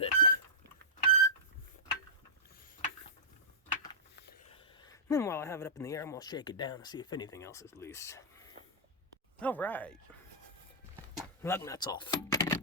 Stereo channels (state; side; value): normal; both; correlation -0.16